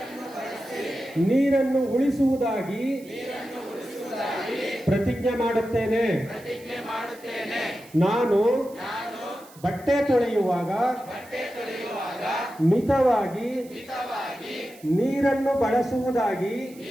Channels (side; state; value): right; noise; hiss, 23 dB below the sound